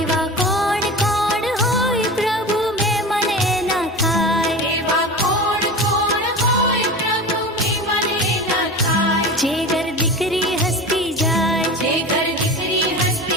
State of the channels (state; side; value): normal; both; correlation 0.30